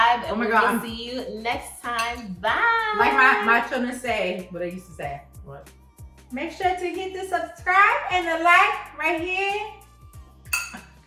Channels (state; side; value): identical; both; correlation 1.00